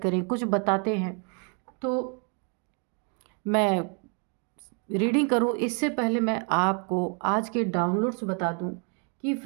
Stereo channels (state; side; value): quieter; left; 37.5 dB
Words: करें, कुछ बताते हैं। तो मैं रीडिंग करूं इससे पहले मैं आपको आज के डाउनलोड्स बता दूं कि